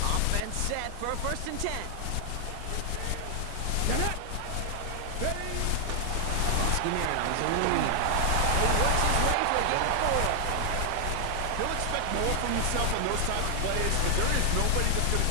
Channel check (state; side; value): different; both; correlation 0.00